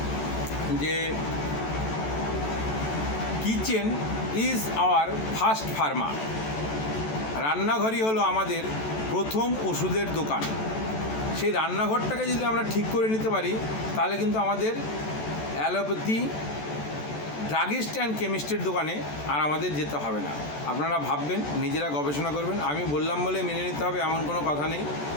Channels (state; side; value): late; right; 14 ms